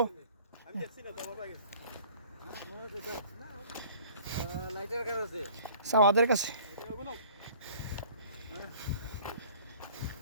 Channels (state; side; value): inverted; both; correlation -0.50